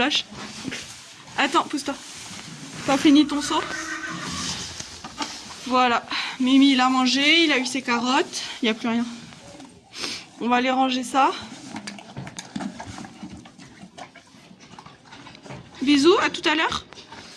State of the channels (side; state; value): both; identical; correlation 1.00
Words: Attends, pousse-toi. T'as fini ton seau? Voilà. Mimi, il a mangé, il a eu ses carottes. Il n'y a plus rien. On va aller ranger ça. Bisous, à tout à l'heure.